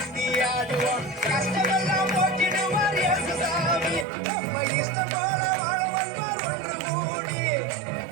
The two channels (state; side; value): drops out; left; at 4.0 s